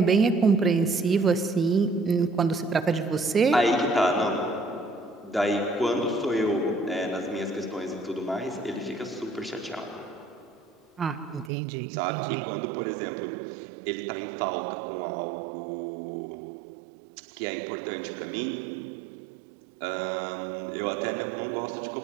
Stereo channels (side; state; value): left; drops out; at 11.5 s